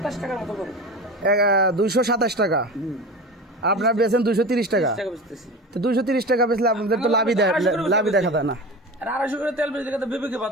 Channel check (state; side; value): normal; both; correlation 0.30